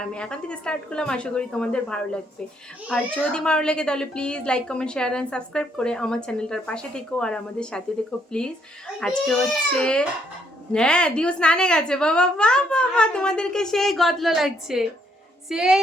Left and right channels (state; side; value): normal; both; correlation 0.71